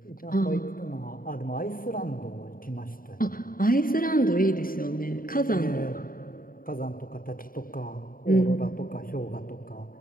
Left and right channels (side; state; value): right; late; 0.41 ms